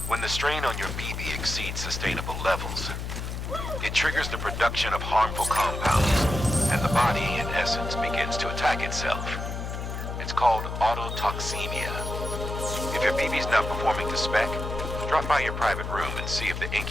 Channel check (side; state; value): left; noise; hum, 5 dB below the sound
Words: When the strain on your BB exceeds sustainable levels, it triggers the production of harmful compounds, and the body, in essence, begins to attack itself. It's called autotoxemia. If your BB's not performing to spec, drop by your private room and see if the